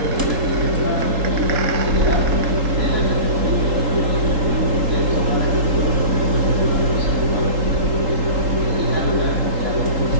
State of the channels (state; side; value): late; left; 3.8 ms